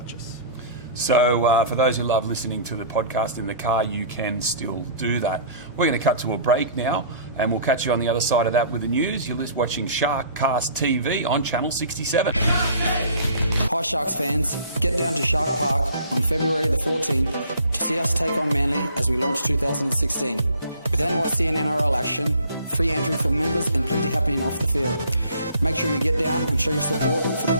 us. So for those who love listening to the podcast in the car, you can still do that. We're going to cut to a break now, and we'll catch you on the other side of that with the news. You're watching SharkCast TV on Channel 67. Hi Sharks fans, get down to Shark Park on February the 14th to see us take on Manly as we launch 2016. With NYC and NRL action, free entry for members and plenty happening off the field. Make sure you get down and show your support for the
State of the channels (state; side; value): inverted; both; correlation -0.50